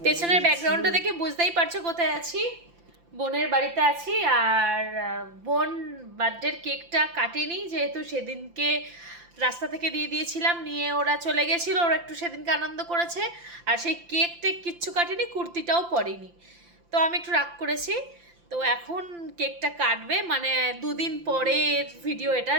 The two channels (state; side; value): late; left; 5.8 ms